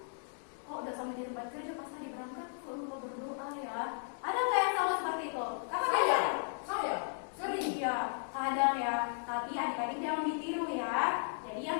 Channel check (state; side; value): silent; right; digital silence